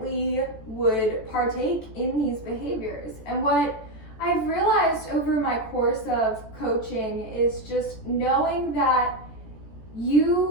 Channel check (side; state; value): right; late; 14 ms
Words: would partake in these behaviors. And what I've realized over my course of coaching is just knowing that